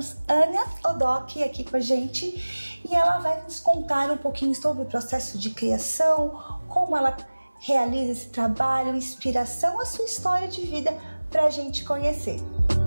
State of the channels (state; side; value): inverted; both; correlation -1.00